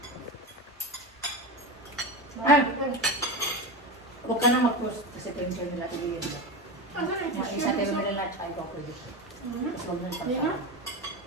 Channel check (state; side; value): normal; both; correlation 0.21